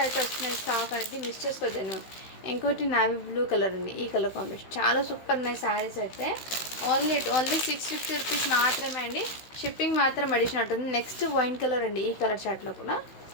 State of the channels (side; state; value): right; late; 16 ms